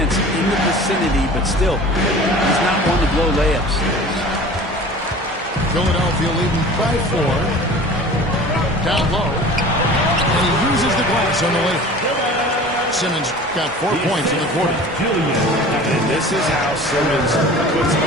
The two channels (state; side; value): normal; both; correlation 0.41